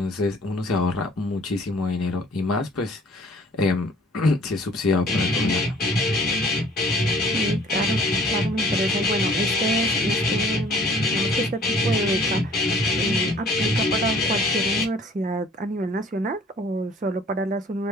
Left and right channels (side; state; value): both; normal; correlation 0.54